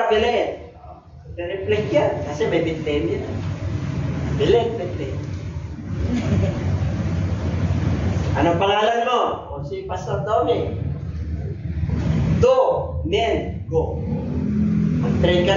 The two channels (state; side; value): identical; both; correlation 1.00